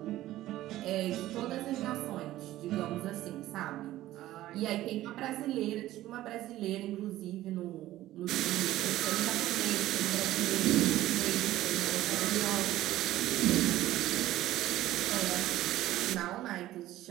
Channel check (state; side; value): quieter; left; 15.0 dB